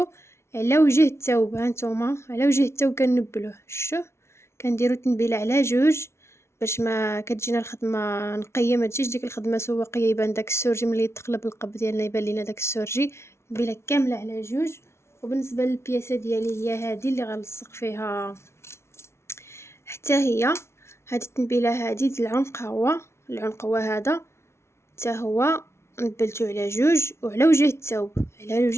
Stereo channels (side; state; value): right; late; 0.13 ms